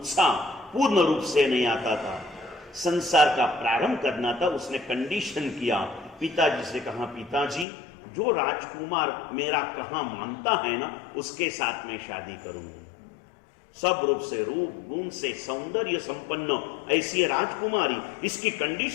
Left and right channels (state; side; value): drops out; right; at 7.7 s